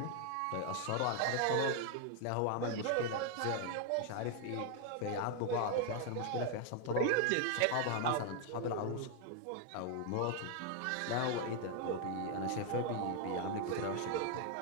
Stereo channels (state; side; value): different; both; correlation 0.00